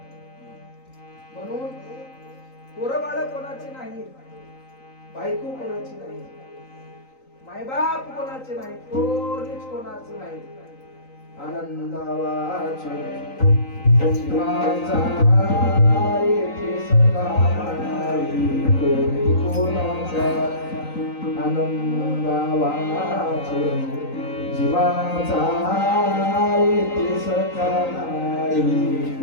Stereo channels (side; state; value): right; late; 3.9 ms